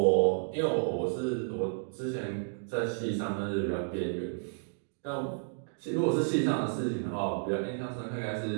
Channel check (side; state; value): left; silent; digital silence